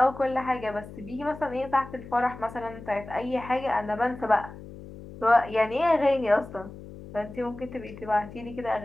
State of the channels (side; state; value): left; noise; hum, 15 dB below the sound